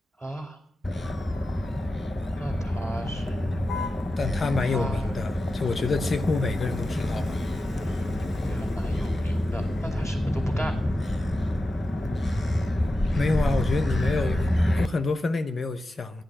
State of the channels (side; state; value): both; normal; correlation 0.91